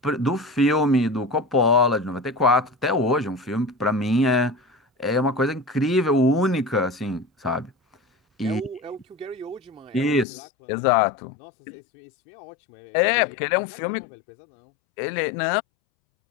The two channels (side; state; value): right; drops out; at 10.2 s